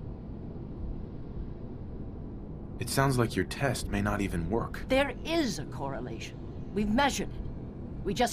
It sounds like your test may not even work. There is a correlation. We've measured it. We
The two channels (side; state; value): both; identical; correlation 1.00